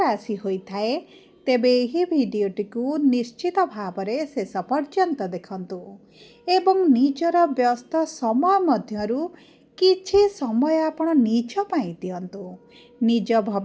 होता है तेबे यही भिडटी को निश्चित भाव में शेष पर्यंत देखंतु एवं निजर व्यस्त समय मध्यरु किछि समय आपण निज पाई दियंतु, निज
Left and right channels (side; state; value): both; identical; correlation 1.00